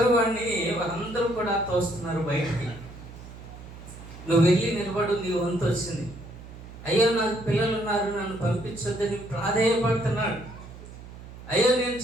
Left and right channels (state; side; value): noise; right; hum, 15 dB below the sound